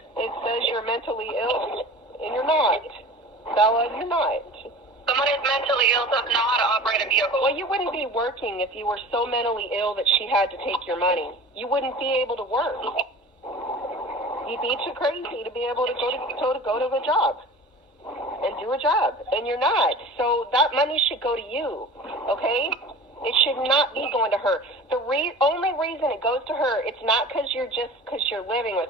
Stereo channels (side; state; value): both; normal; correlation 0.39